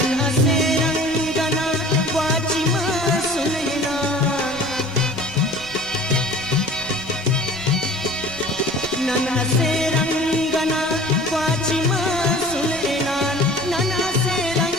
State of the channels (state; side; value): noise; left; rumble, 23 dB below the sound